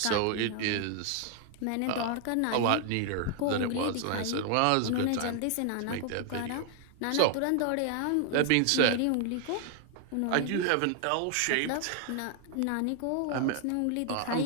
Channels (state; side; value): different; both; correlation 0.00